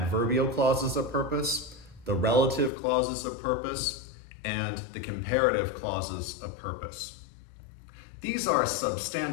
clauses of purpose, the relative clauses of purpose, and the comparative clauses of purpose. These are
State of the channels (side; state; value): right; drops out; at 2.7 s